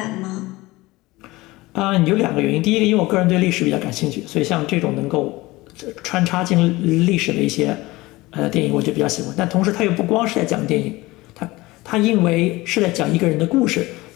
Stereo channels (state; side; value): quieter; right; 20.4 dB